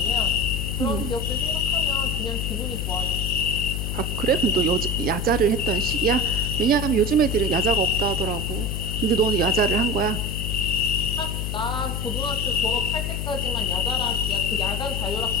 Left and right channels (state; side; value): noise; left; hum, 3 dB below the sound